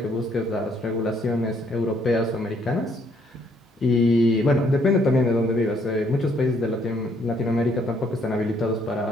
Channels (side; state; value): both; normal; correlation 0.68